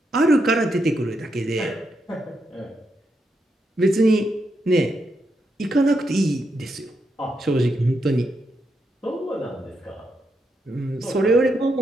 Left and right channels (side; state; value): both; normal; correlation 0.82